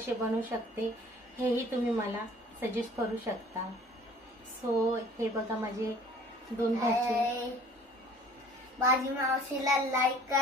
बनवू शकते हेही तुम्ही मला सजेस्ट करू शकता। सो हे बघा माझे दोन भाचे। माझी मावशीला लाईक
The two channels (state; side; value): normal; both; correlation 0.51